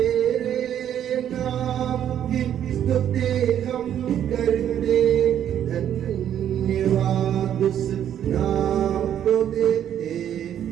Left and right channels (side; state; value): left; quieter; 10.2 dB